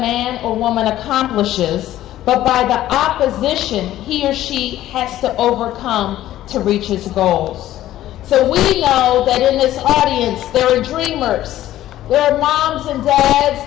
or woman accomplishes, but by the opposition he or she has to overcome to reach his goals." So we know that in this audience, there are dreamers. There are moms and dads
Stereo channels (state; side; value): quieter; right; 13.7 dB